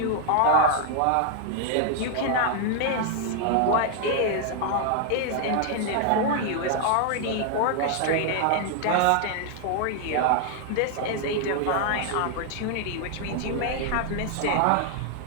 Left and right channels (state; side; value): different; both; correlation 0.00